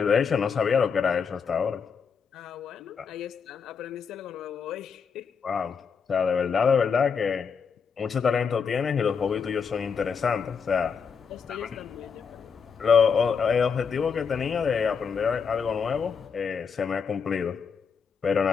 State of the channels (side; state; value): right; quieter; 6.2 dB